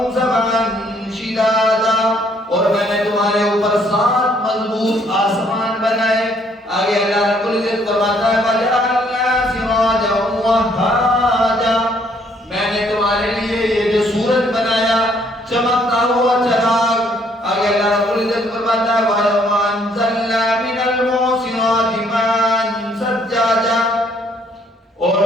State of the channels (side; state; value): both; normal; correlation 0.66